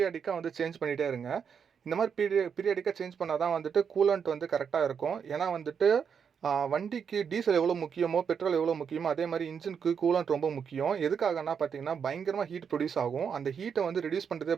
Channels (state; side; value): quieter; left; 6.9 dB